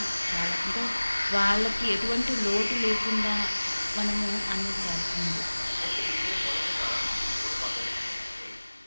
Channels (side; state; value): both; inverted; correlation -1.00